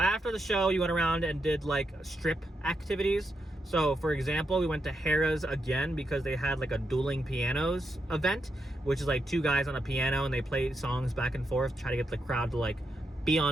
the show, you went around and did like strip activities. So for example, we went to Harrah's again because they had like a dueling pianos event, which is like 2 guys on a piano and they play songs back and forth, try to get the crowd to like be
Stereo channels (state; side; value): normal; both; correlation 0.83